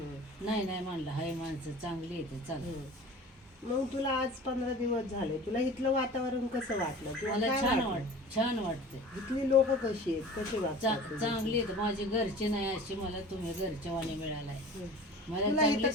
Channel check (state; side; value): normal; both; correlation 0.40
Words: नाही म्हणलं हाय माणसं चांगली येते चला. मग तुला आज 15 दिवस झाले, तुला इथलं वातावरण कसं वाटलं? मला छान वाटतं. इथली लोक कशी आहेत, कशी वाटतात? चांगली आहेत. माझे घरचे नाही अशी मला तुम्ही घरचे वाणी मिळालाय. मला